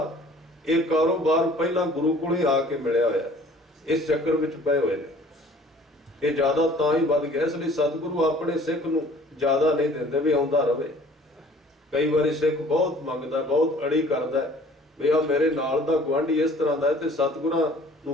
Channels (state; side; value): normal; both; correlation 0.52